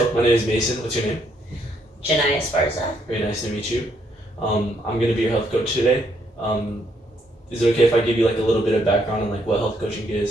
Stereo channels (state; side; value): normal; both; correlation 0.72